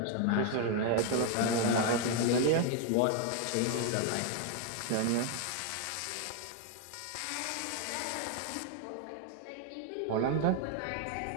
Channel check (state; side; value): different; both; correlation 0.00